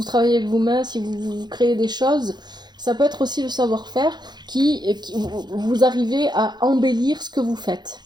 travaillez avec vos mains, si vous créez des choses, ça peut être aussi le savoir-faire qui vous arrivez à embellir ce que vous faites.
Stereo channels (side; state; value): left; late; 0.21 ms